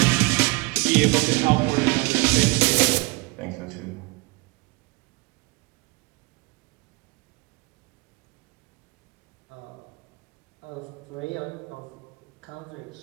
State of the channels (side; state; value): left; quieter; 26.3 dB